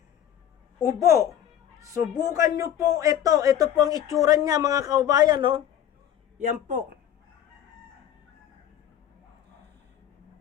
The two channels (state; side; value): quieter; right; 10.4 dB